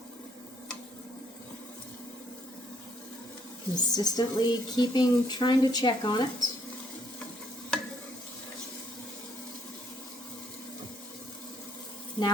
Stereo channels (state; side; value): normal; both; correlation 0.69